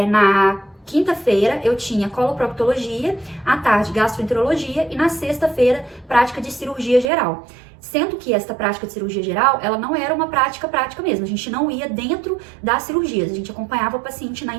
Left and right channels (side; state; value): left; drops out; at 7.1 s